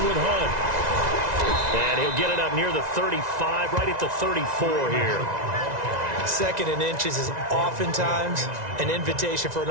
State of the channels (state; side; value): late; left; 1.9 ms